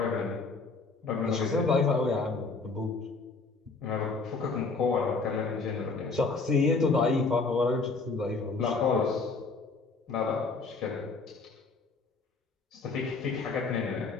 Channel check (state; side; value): quieter; right; 4.1 dB